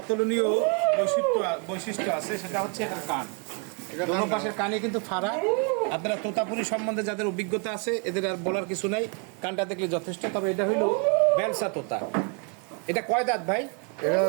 বৈশিষ্ট্য আছে, সেটা হচ্ছে এটার কান। দোনো পাশের কানে কিন্তু ফাড়া। আপনারা তোতাপুরি সম্বন্ধে যাদের অভিজ্ঞতা আছে, এদের আর বলার কিছু নাই, কানটা দেখলে যথেষ্ট। তবে এটা হইল বেলসা তোতা। এটা কয় দাঁত ভাই? এটা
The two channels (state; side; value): quieter; left; 36.9 dB